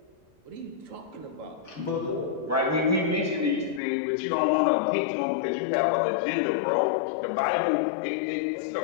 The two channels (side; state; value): right; drops out; at 3.8 s